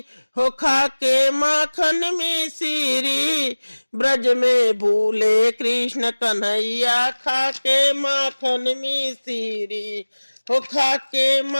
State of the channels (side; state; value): both; inverted; correlation -1.00